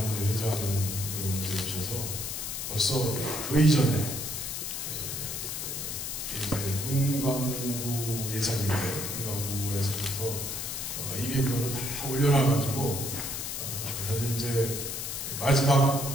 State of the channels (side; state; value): left; noise; hiss, 4 dB below the sound